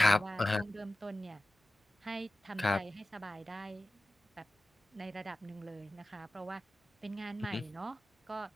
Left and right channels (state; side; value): normal; both; correlation 0.95